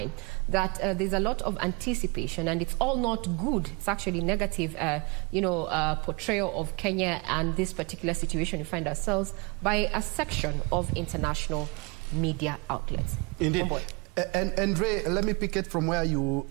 that there's a lot of anticipation, and it's all not good. It's actually negative, portrayal of Kenya and this particular situation we find ourselves by a section of international media outlets. Indeed. And Ray, let me pick it from where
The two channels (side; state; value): left; quieter; 29.5 dB